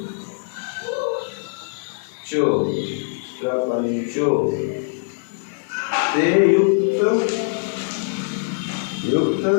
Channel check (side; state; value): right; silent; 62 dB below the other